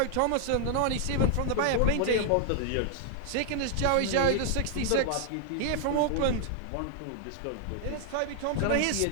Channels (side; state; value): both; different; correlation 0.00